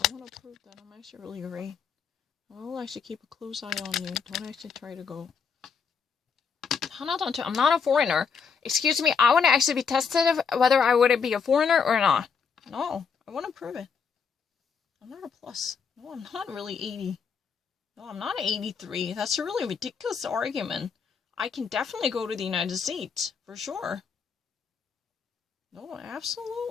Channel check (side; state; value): right; quieter; 6.1 dB